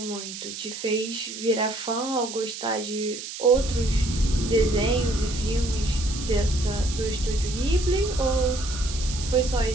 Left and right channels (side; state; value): right; noise; hiss, 9 dB below the sound